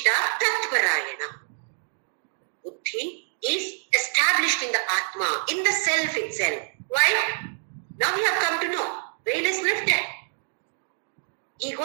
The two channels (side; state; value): left; silent; digital silence